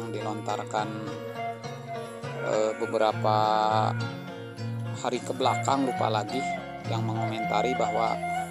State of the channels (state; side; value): identical; both; correlation 1.00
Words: dilontarkan beberapa hari ke belakang, lupa lagi, yang mengomentari bahwa